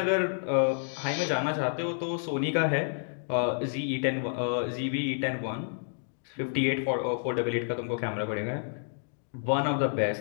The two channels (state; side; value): silent; right; digital silence